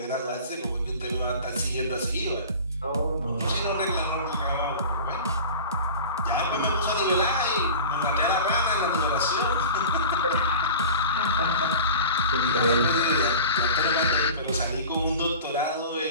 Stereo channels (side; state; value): both; inverted; correlation -0.37